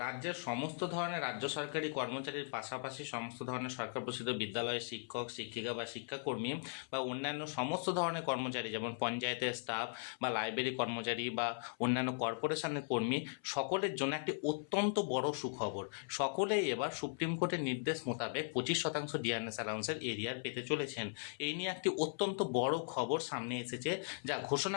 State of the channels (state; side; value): silent; right; 52 dB below the other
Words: রাজ্যের সমস্ত ধরনের রাজ্য সরকারি কর্মচারীর পাশাপাশি সমস্ত ধরনের সরকার প্রসিদ্ধ বিদ্যালয়ের শিক্ষক শিক্ষিকা বা শিক্ষাকর্মী বা অন্যান্য সমস্ত ধরনের কর্মচারী, যেমন পঞ্চায়েতের স্টাফ বা লাইব্রেরি কর্মচারী বা অন্যান্য কর্পোরেশনের কর্মী, সকলের জন্য একটি অত্যন্ত বড় সুখবর। সকলেই এবার সুপ্রিম কোর্টের নির্দেশ মোতাবেক 25% ডিএনএস অ্যালাউন্সের এরিয়ার পেতে চলেছেন। এই নিয়ে একটি অত্যন্ত বড় খবর সামনে এসেছে, যা